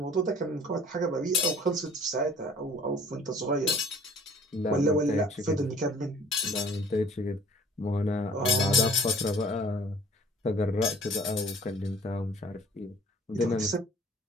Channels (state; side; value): normal; both; correlation 0.52